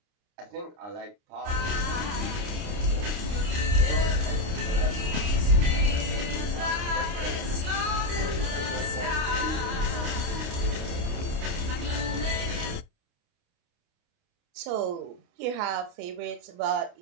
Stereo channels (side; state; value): left; late; 29 ms